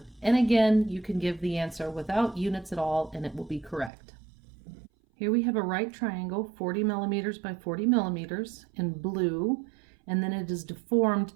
And again, you can give the answer without units at all, and it will be correct. Here we have a right triangle, 40 millimeters by 40 millimeters in blue, and then it is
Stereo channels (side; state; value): left; drops out; at 3.9 s